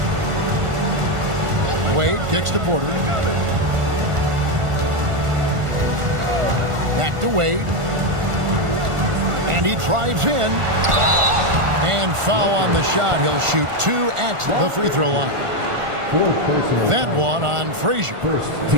Wade kicks to Porter. Back to Wade. And he drives in. And foul on the shot. He'll shoot 2 at the free throw line. That one on Frazier.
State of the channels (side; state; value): left; late; 1.4 ms